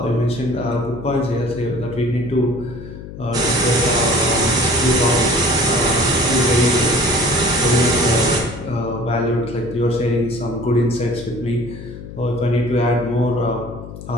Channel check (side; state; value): left; noise; hum, 13 dB below the sound